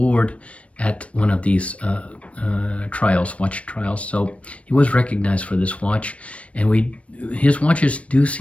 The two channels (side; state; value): right; late; 0.063 ms